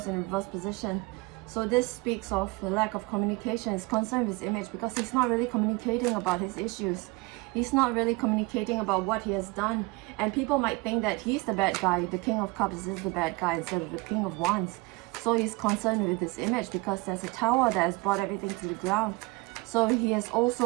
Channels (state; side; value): quieter; left; 24.7 dB